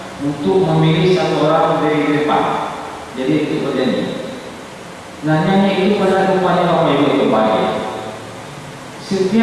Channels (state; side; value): identical; both; correlation 1.00